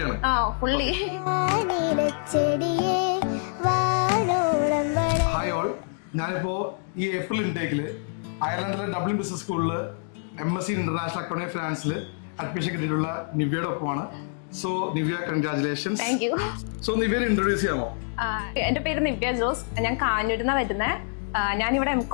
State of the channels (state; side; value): silent; right; digital silence